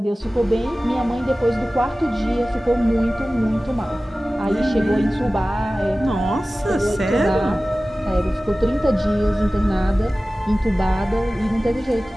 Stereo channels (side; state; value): both; normal; correlation 0.97